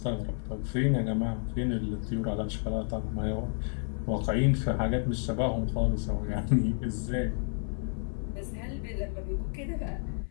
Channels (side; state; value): right; silent; 57 dB below the other